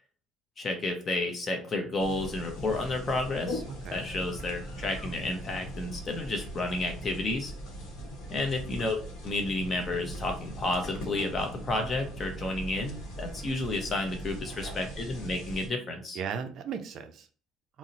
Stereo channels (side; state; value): both; normal; correlation 0.68